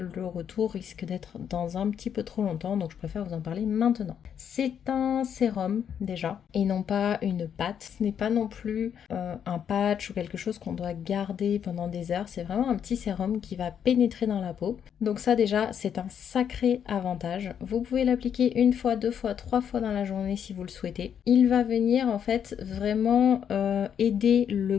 retour risque d'être dans un petit peu trop longtemps, donc je préfère vous en parler maintenant. C'est un sérum déjà et non pas une pâte. Ce n'est pas non plus un patch ou quelque chose qu'on doit garder pendant des heures. C'est vraiment un petit sérum qui va pénétrer dans la peau. Donc ça déjà c'est un sacré avantage. Vous pouvez l'appliquer une fois, deux fois, trois fois dans la journée si vous le souhaitez. Il va venir en fait vraiment aider le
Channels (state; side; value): quieter; right; 8.4 dB